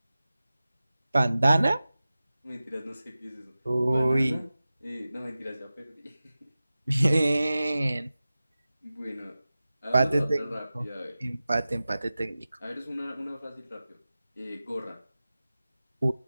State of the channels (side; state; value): both; inverted; correlation -0.95